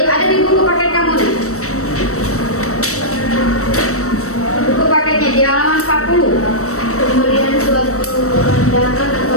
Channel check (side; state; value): right; late; 0.65 ms